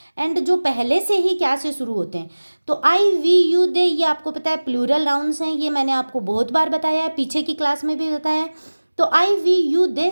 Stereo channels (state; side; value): inverted; both; correlation -1.00